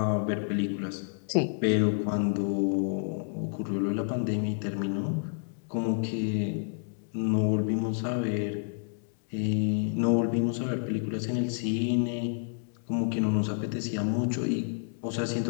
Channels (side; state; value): right; silent; digital silence